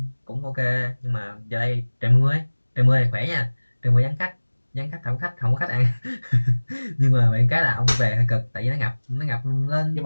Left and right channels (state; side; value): inverted; both; correlation -1.00